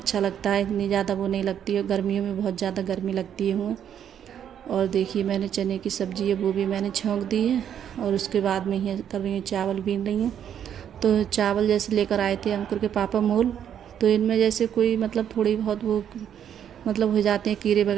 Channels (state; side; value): quieter; left; 9.3 dB